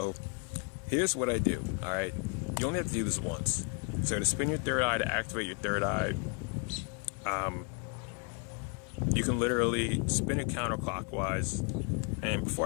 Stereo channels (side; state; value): right; quieter; 35.6 dB